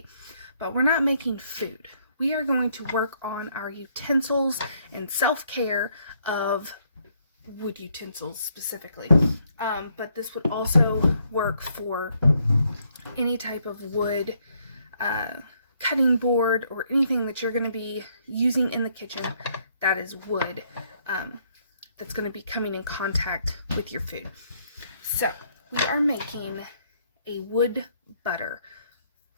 but we're not making food. We are going to work on our utensils and self-care of wood utensils specifically. But this would also work for any type of wood cutting board or anything that you're going to be using in the kitchen that is wood. That's going to be coming in contact with your food. So we are making a wood butter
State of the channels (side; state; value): both; inverted; correlation -0.70